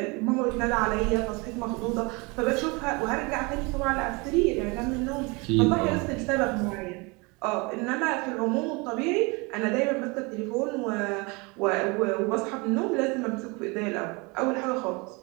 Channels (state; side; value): quieter; left; 27.8 dB